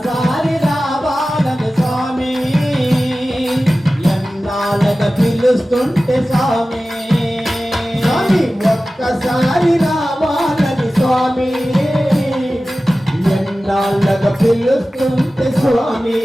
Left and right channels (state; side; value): normal; both; correlation 0.96